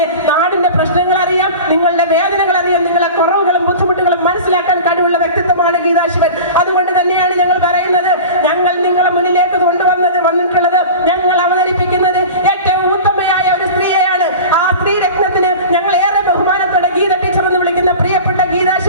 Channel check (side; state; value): both; inverted; correlation -0.34